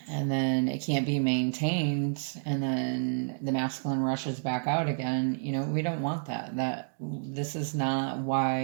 then it can't be maintained, and then the masculine rushes back out again. We don't want that. This is not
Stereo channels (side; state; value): left; silent; digital silence